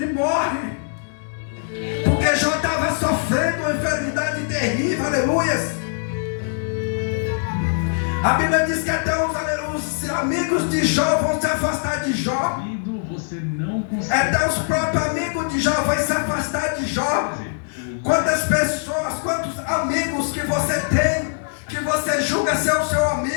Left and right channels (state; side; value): silent; right; digital silence